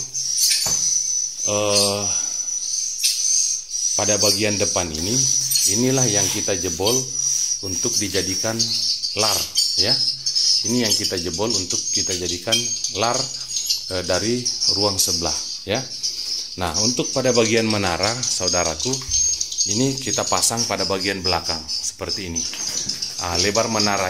pada bagian depan ini, inilah yang kita jebol untuk dijadikan lar ya. Ini yang kita jebol untuk kita jadikan lar dari ruang sebelah ya. Nah, untuk pada bagian menara, saudaraku, ini kita pasang pada bagian belakang seperti ini. Lebar menara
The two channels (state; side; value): identical; both; correlation 1.00